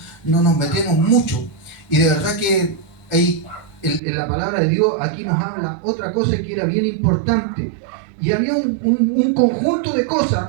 nos metemos mucho. Y de verdad que en la palabra de Dios aquí nos habla otra cosa que era bien importante. Y había un conjunto de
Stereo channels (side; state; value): left; drops out; at 4.0 s